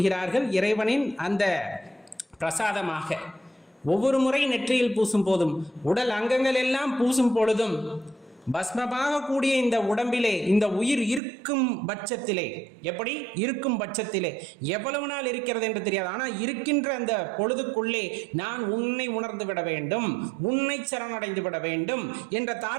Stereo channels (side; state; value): left; drops out; at 11.2 s